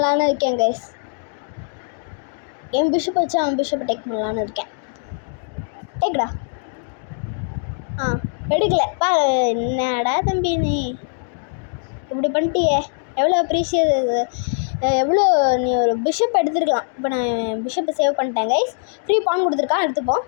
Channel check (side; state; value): right; silent; digital silence